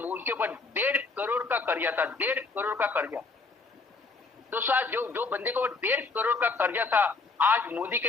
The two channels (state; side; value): quieter; right; 4.0 dB